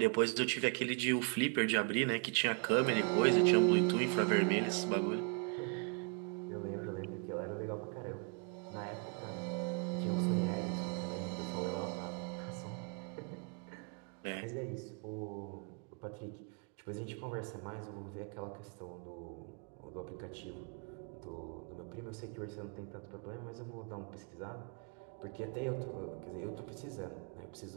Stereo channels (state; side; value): quieter; left; 35.7 dB